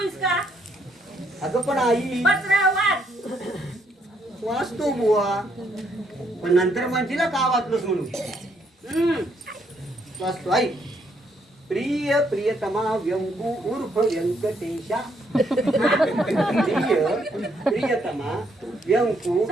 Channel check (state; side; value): normal; both; correlation 0.72